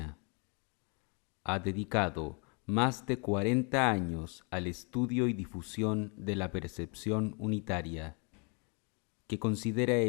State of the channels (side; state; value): right; quieter; 34.5 dB